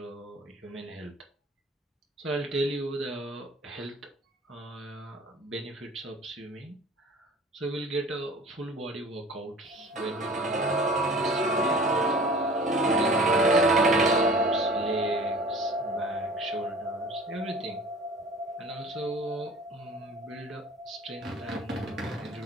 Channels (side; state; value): both; normal; correlation 0.45